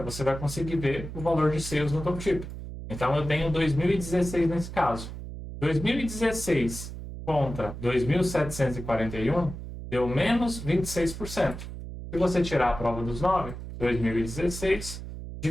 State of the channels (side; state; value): right; noise; hum, 9 dB below the sound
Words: você vai conseguir ver o valor de sales no tooltip. Então, eu tenho 2016 nesse caso. 2016 contra 2.741 deu menos 26%. Se você tirar a prova dos 9, 2016